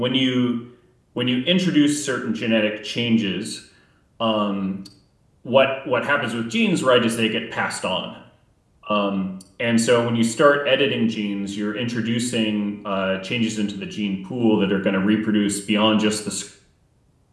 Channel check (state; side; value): identical; both; correlation 1.00